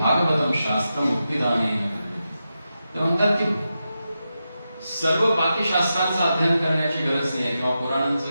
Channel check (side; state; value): both; inverted; correlation -0.89